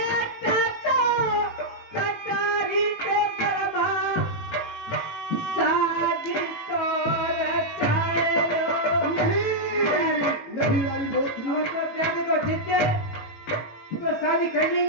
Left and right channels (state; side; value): late; right; 18 ms